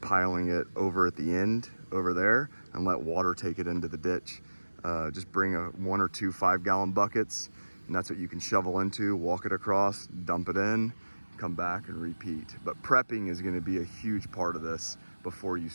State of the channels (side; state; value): both; inverted; correlation -1.00